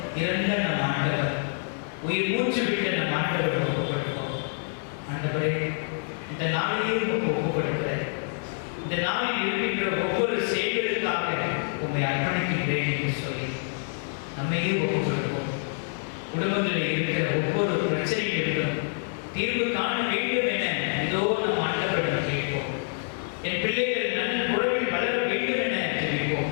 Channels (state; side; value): silent; right; 57 dB below the other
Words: இறந்த நம் ஆண்டவர், உயிர் மூச்சு விட்ட நம் ஆண்டவர் ஒப்புக்கொடுப்போம். ஆண்டவரே, இந்த நாளையே உமக்கு ஒப்புக்கொடுக்கிறேன். இந்த நாளில் இருக்கின்ற ஒவ்வொரு செயல்களுக்காக உண்மை அர்ப்பணிக்கின்றேன் என்று சொல்லி நம்மையே ஒப்புக்கொடுப்போம். குடும்பங்களில் இருக்கிற ஒவ்வொரு பிரச்சனைகளிலும் தீர்வு காண வேண்டும் என இதோ நம் ஆண்டவரிடம் கேட்போம். என் பிள்ளைகள் நல்ல உறவில் வளர வேண்டும் என